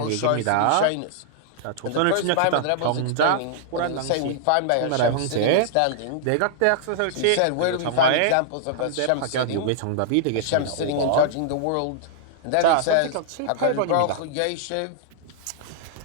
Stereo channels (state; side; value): different; both; correlation -0.01